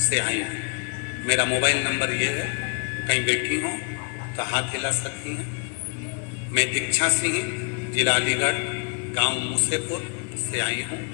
से आई हूँ। मेरा मोबाइल नंबर ये है, कहीं बैठी हो तो हाथ हिला सकती हैं। मैं दीक्षा सिंह, जिला अलीगढ़, गांव मूसेपुर से आई हूँ।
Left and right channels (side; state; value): right; quieter; 36.5 dB